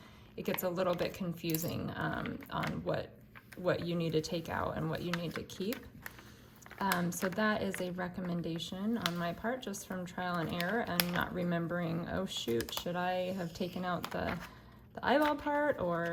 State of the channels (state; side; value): identical; both; correlation 1.00